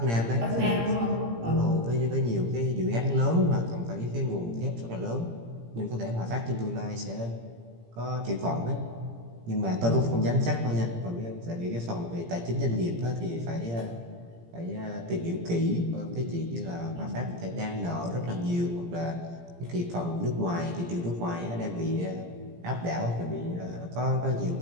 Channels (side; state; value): left; late; 17 ms